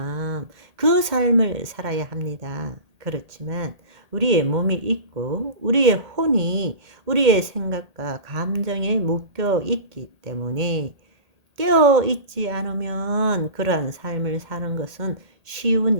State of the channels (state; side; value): late; left; 1.8 ms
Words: 그 삶을 살아야 합니다. 그렇지만 우리의 몸이 있고 우리의 혼이 우리의 생각과 감정에 묶여 있기 때문에 깨어 있지 않으면 그러한 삶을 사는 것은